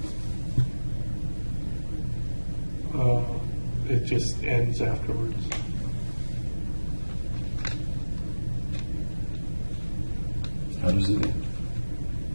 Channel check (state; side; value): inverted; both; correlation -1.00